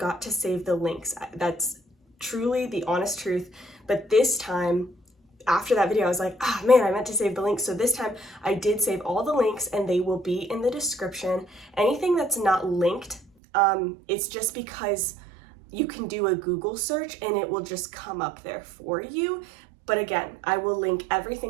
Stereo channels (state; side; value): drops out; left; at 13.2 s